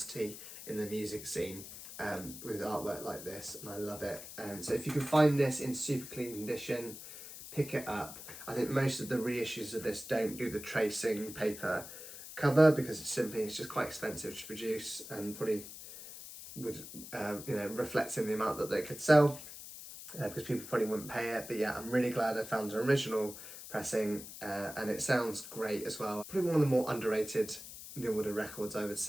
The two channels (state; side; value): noise; left; hiss, 12 dB below the sound